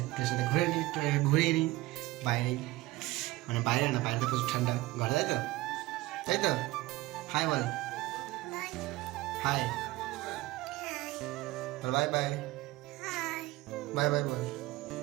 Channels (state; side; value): quieter; left; 18.8 dB